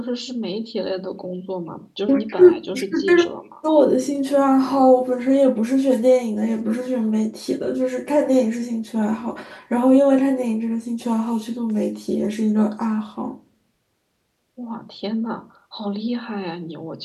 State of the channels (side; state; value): both; identical; correlation 1.00